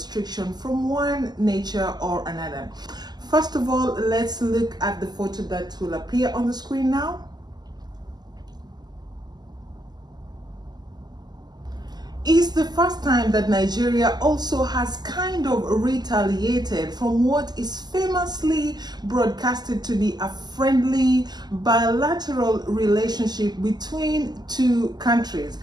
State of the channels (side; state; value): left; late; 0.20 ms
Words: from one nature or another. First of all, let's look at the photo that will appear on the screen now. It's the first time that Nigeria also has kind of retaliated from what is famously broadcasted to be a friendly bilateral relationship between two countries.